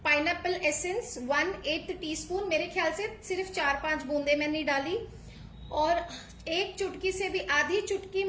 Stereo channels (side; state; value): both; identical; correlation 1.00